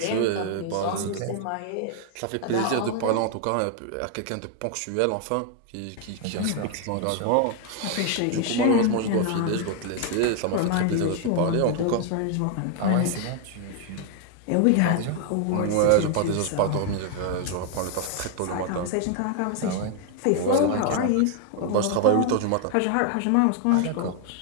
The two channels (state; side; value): different; both; correlation 0.00